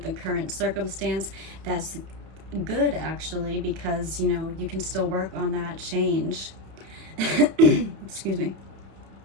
the current circumstance, that's good actually, because, you know, you can still work on that change. Excuse me.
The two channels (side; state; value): left; late; 31 ms